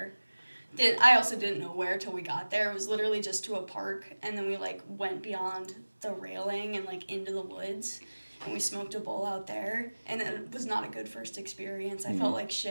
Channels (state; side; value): inverted; both; correlation -1.00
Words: I also didn't know where till we got there. It was literally just to a park, and then we like went beyond the railing and like into the woods, and we smoked a bowl out there, and it was not a good first experience. I felt like